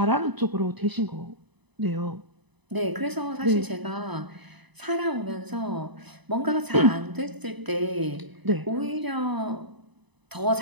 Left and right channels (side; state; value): left; late; 1.0 ms